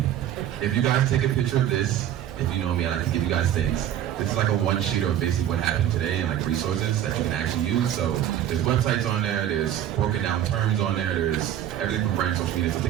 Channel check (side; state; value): left; quieter; 11.0 dB